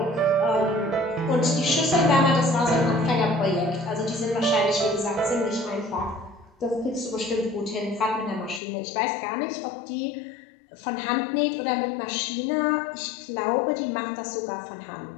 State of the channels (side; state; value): right; drops out; at 8.6 s